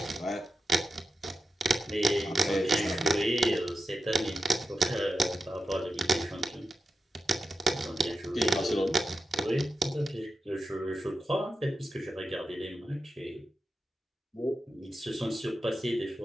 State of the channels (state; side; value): normal; both; correlation 0.88